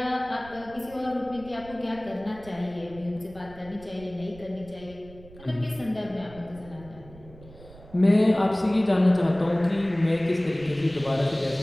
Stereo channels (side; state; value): right; noise; rumble, 20 dB below the sound